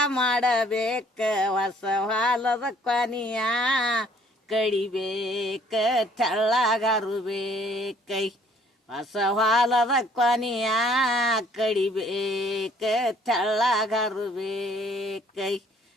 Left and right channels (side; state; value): both; normal; correlation 0.60